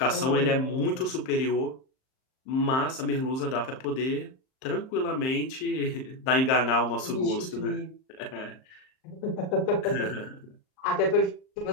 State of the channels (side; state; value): right; late; 38 ms